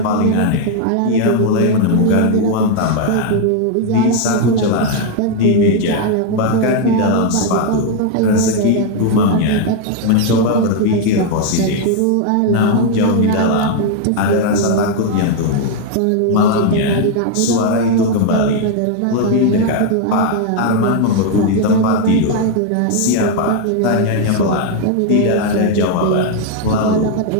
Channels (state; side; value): different; both; correlation 0.00